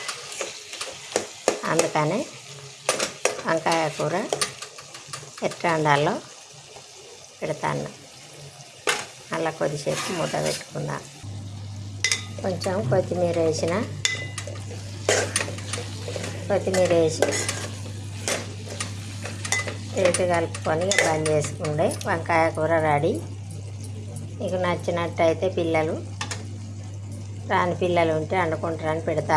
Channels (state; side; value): identical; both; correlation 1.00